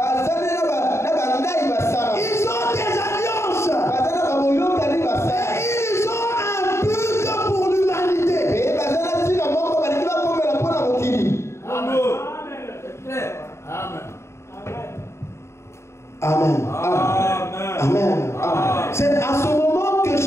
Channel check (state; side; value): late; right; 0.13 ms